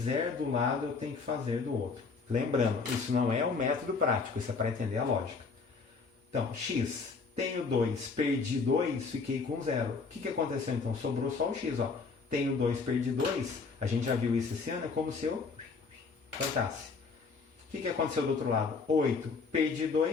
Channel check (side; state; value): right; quieter; 4.6 dB